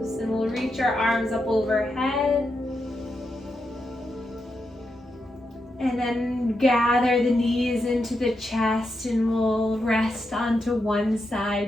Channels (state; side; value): normal; both; correlation 0.85